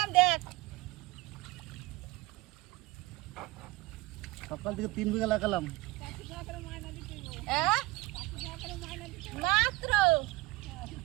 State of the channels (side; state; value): left; quieter; 21.0 dB